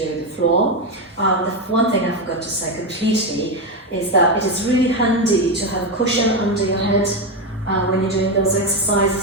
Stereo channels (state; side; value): normal; both; correlation 0.10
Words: floor. The one thing I forgot to say completely is that it is really handy to have a cushion under your head when you're doing those